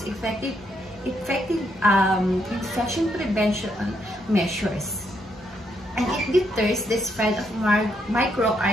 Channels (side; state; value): both; normal; correlation 0.76